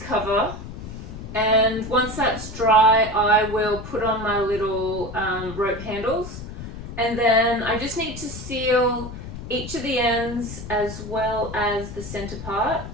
cover, and once that's dry I will put on my little rope handles, and then I just need to seal each of the ends as well as the center part,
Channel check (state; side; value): noise; left; rumble, 10 dB below the sound